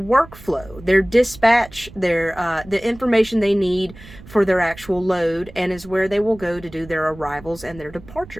their dispatch, the information they need for their actual load, and is where they will go to do their arrivals and their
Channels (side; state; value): right; noise; rumble, 19 dB below the sound